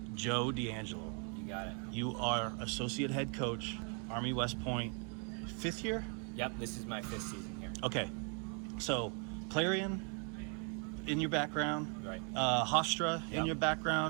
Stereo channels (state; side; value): quieter; left; 38.9 dB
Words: Joe Deangelo. You got it. You are associate head coach, Army West Point, 5th year? Yep, this is my 5th season here. Okay, so Clarion in your background, Right. Hofstra in Yep. your